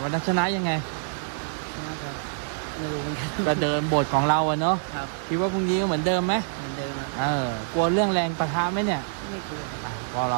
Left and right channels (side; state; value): left; silent; digital silence